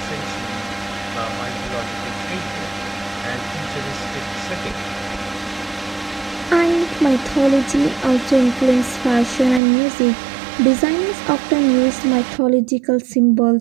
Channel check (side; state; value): left; drops out; at 9.6 s